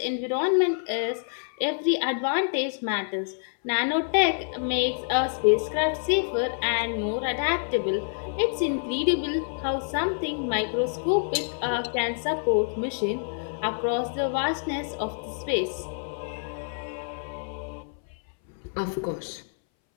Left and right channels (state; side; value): silent; right; 60 dB below the other